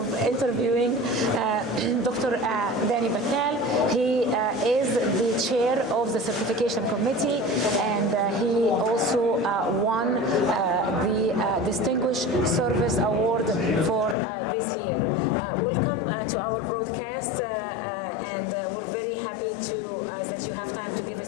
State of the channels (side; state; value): right; drops out; at 14.2 s